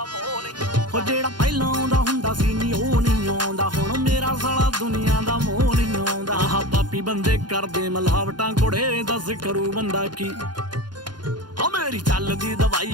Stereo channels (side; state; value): left; late; 0.71 ms